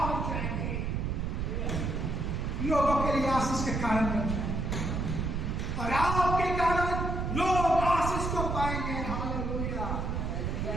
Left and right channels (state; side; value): noise; right; rumble, 1 dB below the sound